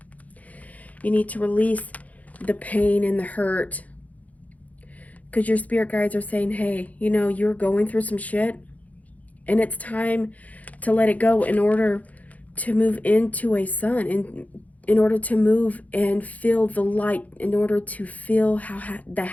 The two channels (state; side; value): late; right; 0.074 ms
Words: You need to release the pain and the hurt. Because your spirit guides are saying, hey, you know, you're going through some shit. And it's time to let it go in order to move into a sun. In order to move and feel the light. In order to feel the